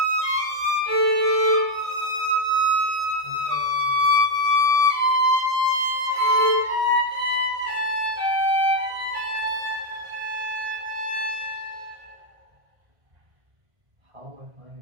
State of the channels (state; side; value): late; left; 1.5 ms